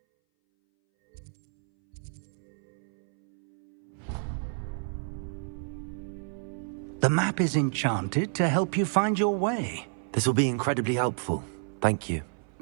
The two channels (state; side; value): silent; left; 58 dB below the other